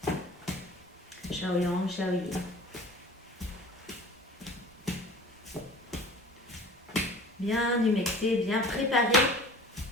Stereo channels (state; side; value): normal; both; correlation 0.44